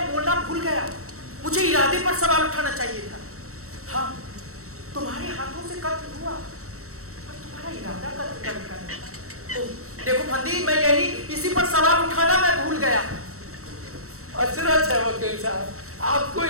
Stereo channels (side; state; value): left; late; 0.64 ms